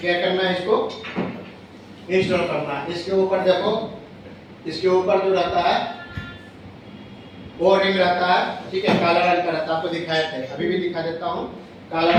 क्या करना है, इसको इंस्टॉल करना है। इसके ऊपर देखो, इसके ऊपर जो रहता है वो रिंग रहता है, ठीक है, काला रंग का रहता है, आपको दिखाए थे, अभी भी दिखा देता हूँ। काला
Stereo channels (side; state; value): both; identical; correlation 1.00